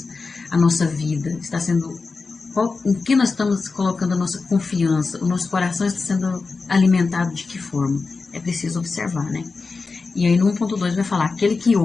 a nossa vida, em que nós estamos colocando a nossa confiança, o nosso coração está sendo alimentado de que forma? É preciso observar, né? E aí no 1.2 vai falar, aquele que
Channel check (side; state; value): right; quieter; 4.3 dB